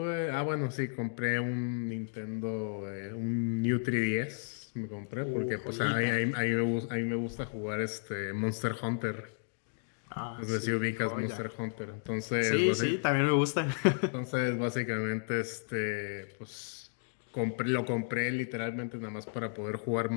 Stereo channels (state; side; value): silent; right; digital silence